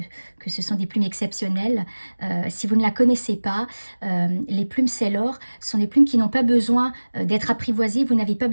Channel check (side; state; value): both; inverted; correlation -1.00